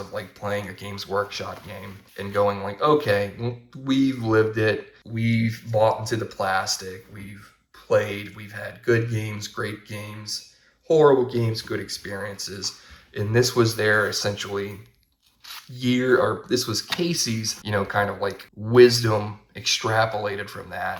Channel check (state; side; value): identical; both; correlation 1.00